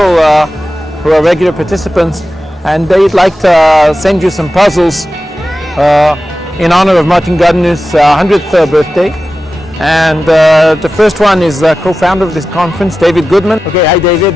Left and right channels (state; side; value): normal; both; correlation 0.94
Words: who are regular participants, and they'd like to send you some puzzles in honor of Martin Gardner's 100th birthday. And the first one is co-founder of this conference, David Goodman. Okay, hi